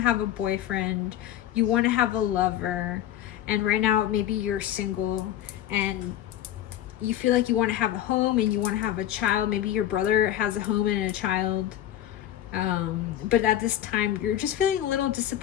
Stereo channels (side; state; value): right; quieter; 12.0 dB